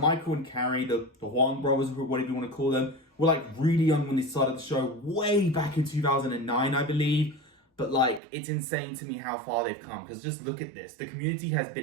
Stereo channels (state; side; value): drops out; left; at 8.2 s